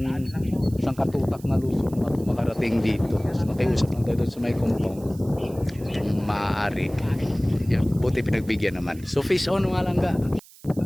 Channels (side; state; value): right; noise; hiss, 23 dB below the sound